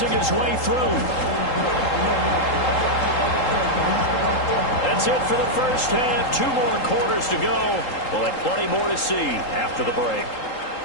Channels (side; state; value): right; late; 3.8 ms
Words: his way through. That's it for the first half. 2 more quarters to go. We'll have plenty more to see after the break.